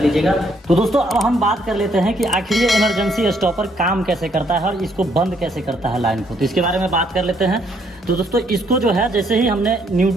लीजिएगा। तो दोस्तों अब हम बात कर लेते हैं कि आखिर ये इमरजेंसी स्टॉपर काम कैसे करता है और इसको बंद कैसे करता है लाइन को। तो इसके बारे में बात कर लेते हैं। तो दोस्तों इसको जो है, जैसे ही हमने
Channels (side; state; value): both; normal; correlation 0.70